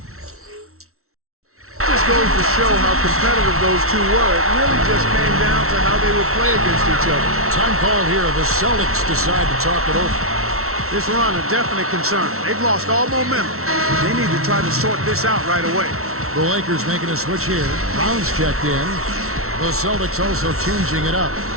just goes to show how competitive those two were. It really just came down to how they would play against each other. Time call here. The Celtics decide to talk it over. This run a definite concern. They've lost all momentum. They need to try to sort this out right away. The Lakers making a switch here. Brown's checked in. The Celtics also changing it up.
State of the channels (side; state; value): left; late; 0.63 ms